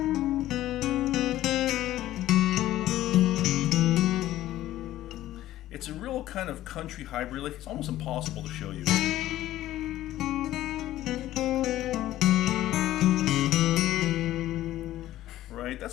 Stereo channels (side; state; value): right; quieter; 14.3 dB